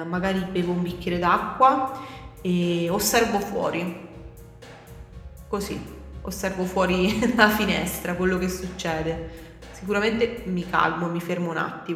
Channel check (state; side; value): identical; both; correlation 1.00